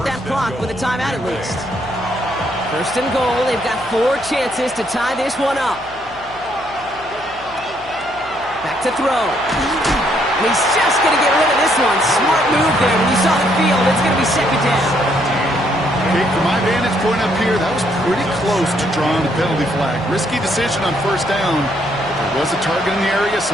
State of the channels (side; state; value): left; noise; hum, 23 dB below the sound